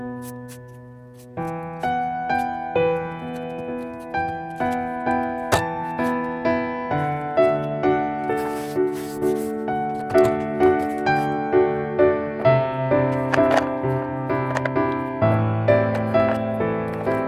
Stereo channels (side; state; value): both; identical; correlation 1.00